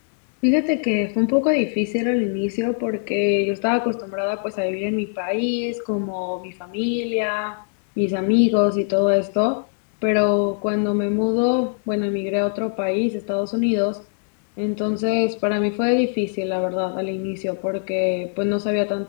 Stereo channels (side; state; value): right; silent; digital silence